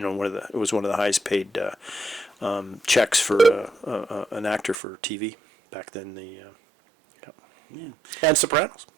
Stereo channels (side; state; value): left; drops out; at 4.8 s